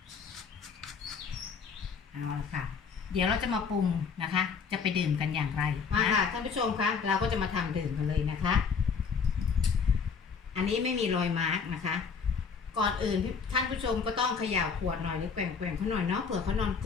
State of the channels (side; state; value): right; quieter; 5.9 dB